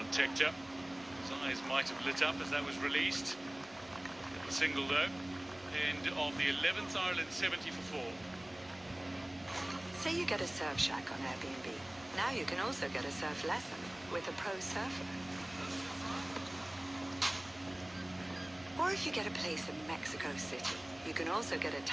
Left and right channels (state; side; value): noise; right; rumble, 27 dB below the sound